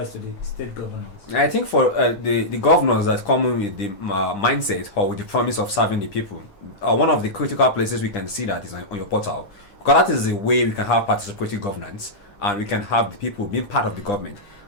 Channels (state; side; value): late; right; 9.9 ms